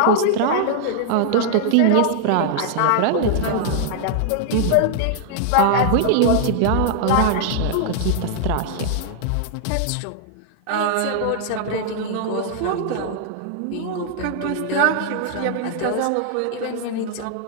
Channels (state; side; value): different; both; correlation 0.00